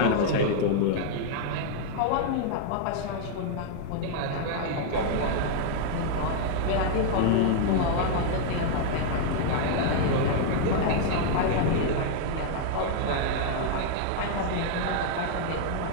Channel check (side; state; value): both; different; correlation -0.01